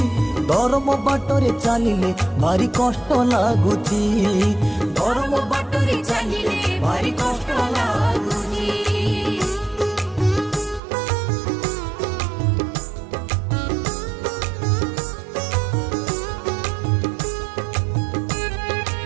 धर्म बाटरे चलिले भारी कष्ट लगुची। धर्म बाटरे चलिले भारी कष्ट लगुची।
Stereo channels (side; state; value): left; drops out; at 10.8 s